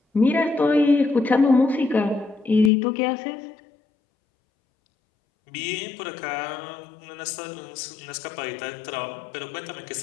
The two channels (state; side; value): drops out; right; at 2.7 s